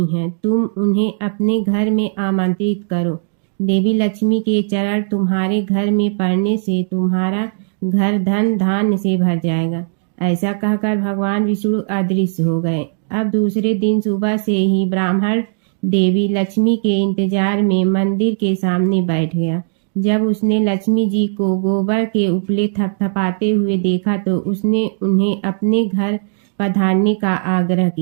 है। तुम उन्हें अपने घर में आमंत्रित करो। देवी लक्ष्मी के चरण तुम्हारे घर में पड़ने से तुम्हारा घर धन धान्य से भर जाएगा। ऐसा कहकर भगवान विष्णु अदृश्य हो गए। अब दूसरे दिन सुबह से ही ब्राह्मण देवी लक्ष्मी के इंतजार में मंदिर के सामने बैठ गया। जब उसने लक्ष्मी जी को गोबर के उपले थपथपाते हुए देखा तो उसने उन्हें अपने घर पधारने का आग्रह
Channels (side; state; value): left; silent; digital silence